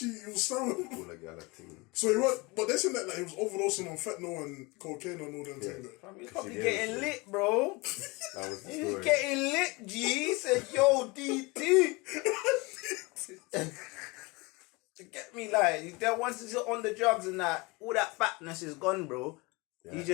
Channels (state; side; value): quieter; right; 25.6 dB